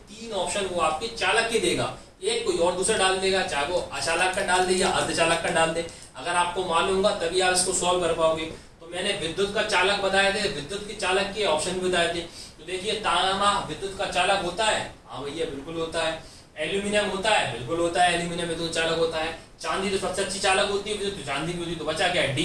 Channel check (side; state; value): both; identical; correlation 1.00